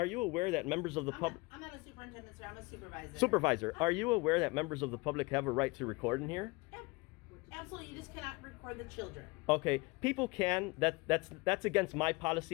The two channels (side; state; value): right; quieter; 25.3 dB